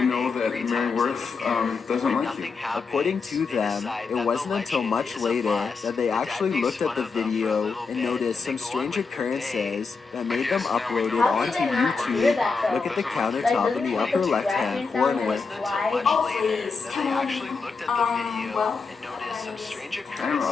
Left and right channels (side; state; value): right; quieter; 4.8 dB